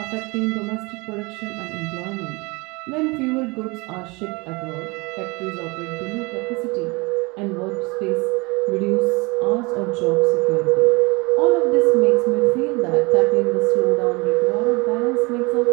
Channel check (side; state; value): left; quieter; 26.3 dB